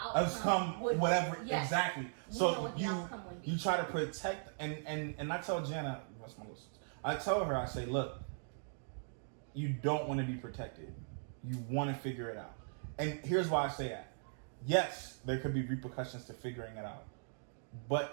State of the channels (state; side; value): silent; left; digital silence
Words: outcome would whatever Yes. exactly. We know So what the outcome would be. you try to protect and I tell Jana, what's my list? I tell her, I say, look, you don't want to be protected. You want to figure it out. And here's why I say that. Yes, there could be repercussions to figuring it out. But